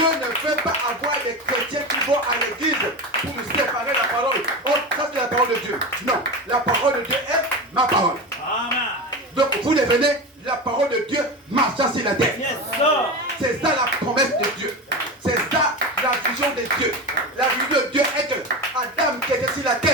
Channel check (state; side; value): normal; both; correlation 0.24